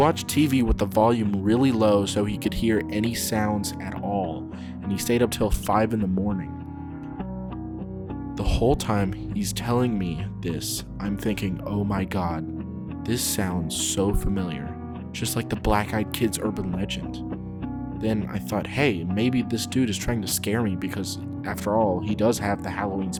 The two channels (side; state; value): both; identical; correlation 1.00